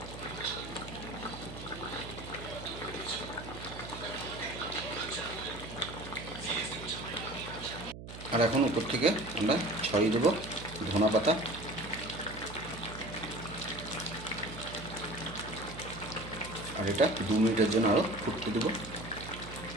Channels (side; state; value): right; noise; hum, 12 dB below the sound